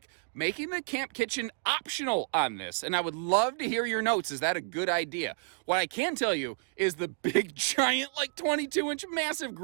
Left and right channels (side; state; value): left; silent; digital silence